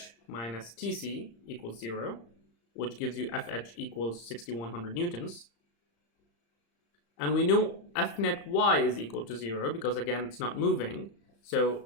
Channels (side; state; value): right; late; 35 ms